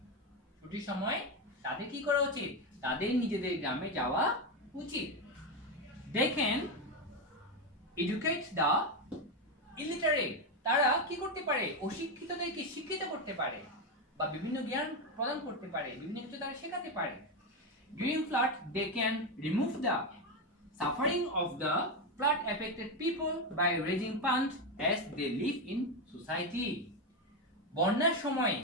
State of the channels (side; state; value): both; normal; correlation 0.10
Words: ছুটির সময় তাদের কি করা উচিত? তাদের নিজেদের গ্রামে যাওয়া উচিত। They can educate the illiterate. তারা কি করতে পারে? অশিক্ষিতদেরকে শিক্ষিত করতে পারে বা বিভিন্ন জ্ঞান প্রদান করতে পারে, বিভিন্ন কিছু তারা শেখাতে পারে। During flood, they can remove the suffering of the flood affected people by raising funds as they live in society. বন্যার সময়